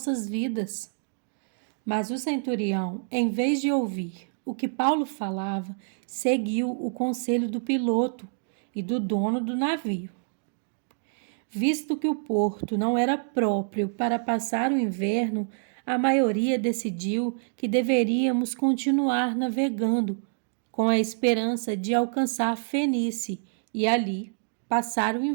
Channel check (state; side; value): silent; left; digital silence